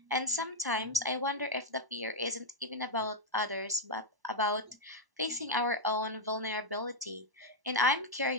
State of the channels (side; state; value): left; late; 1.0 ms